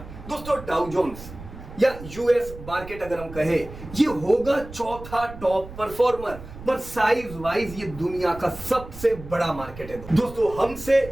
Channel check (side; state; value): right; noise; rumble, 14 dB below the sound